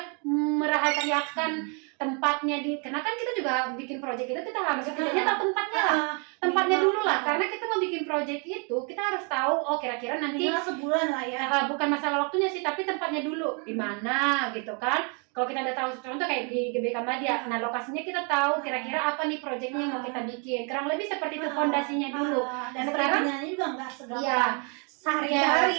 merahasiakan tempatnya karena kan kita juga bikin project itu, kita harus setidaknya tahu tempatnya dulu lah, karena kita mau bikin project itu kita harus tahu kira-kira nanti sebulan lah ya, bukan masalah waktunya sih, tapi tempatnya dulu di mana gitu kan. Kalau kita udah tahu, contoh kayak di GBK Madya, nah lokasinya kita tahu kira-kira apa nih projectnya yang mau kita bikin, kurang lebih seperti itu fondasinya dulu. Dan sekarang juga nggak segampang iya,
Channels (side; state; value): left; quieter; 36.3 dB